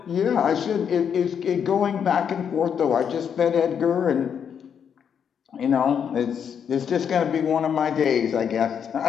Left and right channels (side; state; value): right; quieter; 7.7 dB